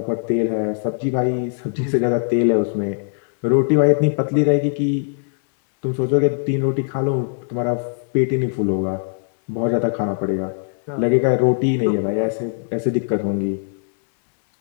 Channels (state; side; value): silent; right; 65 dB below the other